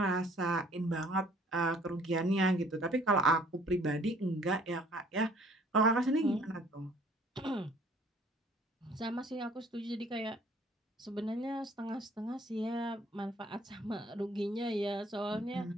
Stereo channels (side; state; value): both; normal; correlation 0.57